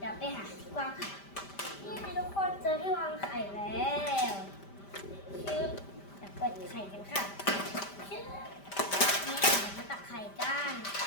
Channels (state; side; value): late; right; 5.1 ms